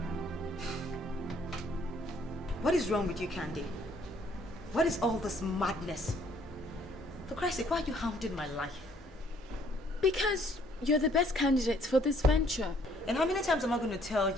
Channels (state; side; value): normal; both; correlation 0.63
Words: What is wrong with you, Candy? What is all this madness? For Christ's sake, why are you hounding my life? Because you're the best candidate for this venture. And how many times am I going to tell